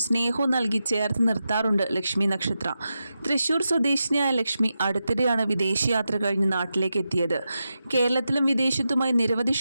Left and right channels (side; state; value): both; inverted; correlation -0.89